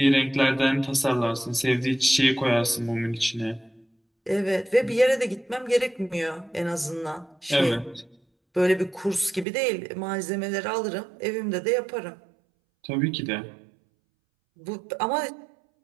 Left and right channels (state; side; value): drops out; left; at 9.5 s